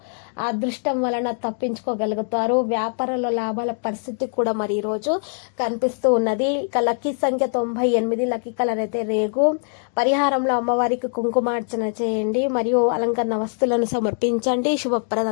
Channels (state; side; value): silent; right; 62 dB below the other